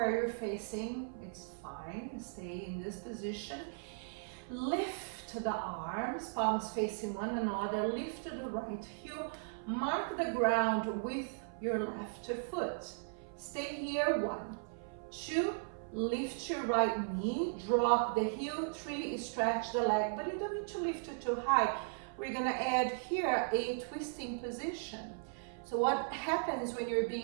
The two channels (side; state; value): left; silent; 53 dB below the other